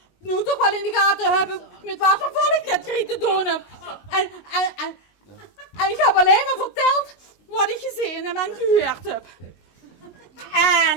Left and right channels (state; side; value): late; right; 19 ms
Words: nu toch wel in de gaten hebben met wat voor volk ik dat kreeg te doen heb. En ik heb alleen maar verteld wat ik gezien en gehoord heb.